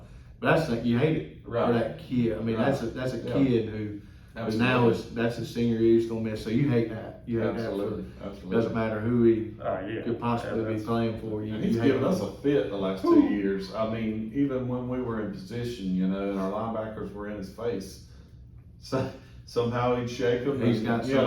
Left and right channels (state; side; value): identical; both; correlation 1.00